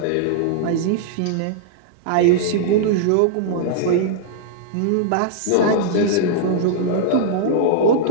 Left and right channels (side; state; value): both; different; correlation -0.02